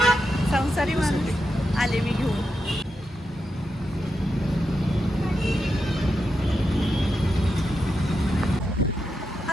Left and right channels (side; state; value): both; normal; correlation 0.87